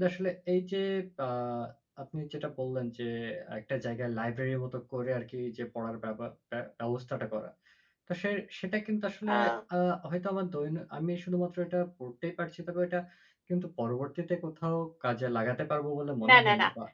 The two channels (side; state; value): both; identical; correlation 1.00